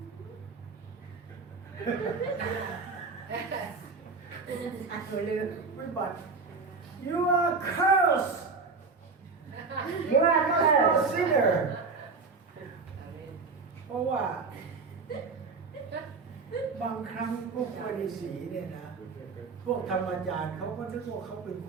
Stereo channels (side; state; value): left; quieter; 4.4 dB